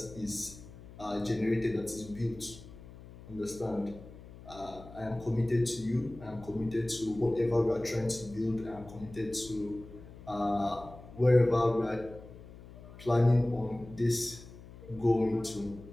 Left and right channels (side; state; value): left; noise; hum, 17 dB below the sound